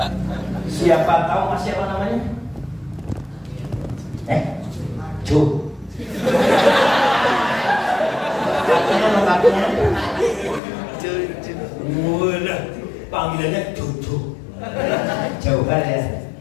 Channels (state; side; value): drops out; right; at 10.6 s